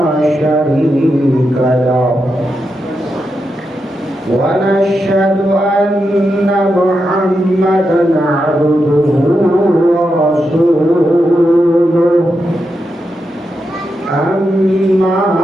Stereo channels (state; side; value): normal; both; correlation 0.86